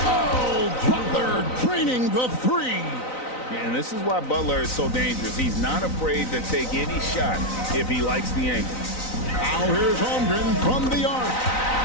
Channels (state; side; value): late; right; 3.9 ms